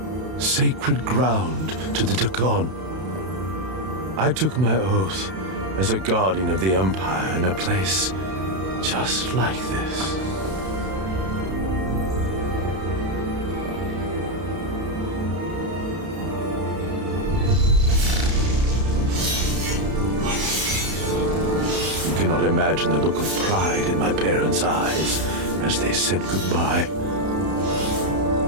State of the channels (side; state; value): left; late; 32 ms